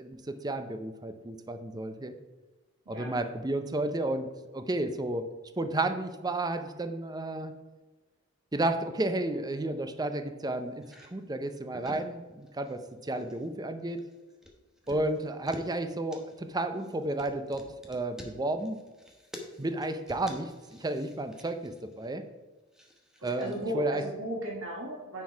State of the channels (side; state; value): both; normal; correlation 0.53